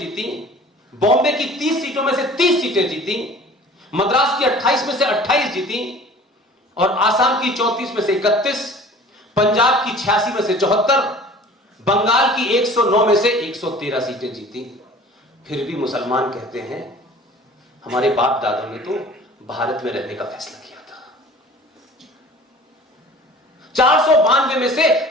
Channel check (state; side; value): normal; both; correlation 0.45